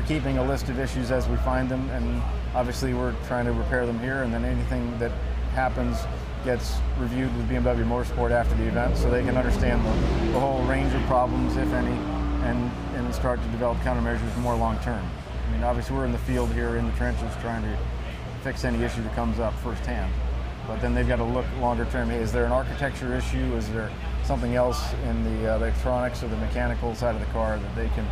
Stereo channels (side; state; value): both; identical; correlation 1.00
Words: keeping a list of issues as we find them, and obviously we're trying to repair them here, and then anything that happens gets reviewed with BMW Motorsport after the event so they can understand the whole range of problems, if any, and start to develop countermeasures more long term. I mean, obviously we're in the field here in the trenches trying to fix any issue that comes up firsthand. But then they've got to look longer term. Hey, is there an architecture issue? Is there something else in the electronics or the mechanical side of the car that they can